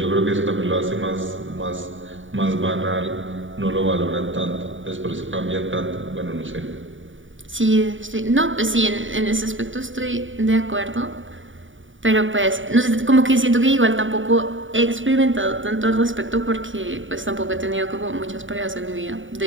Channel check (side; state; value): left; late; 0.57 ms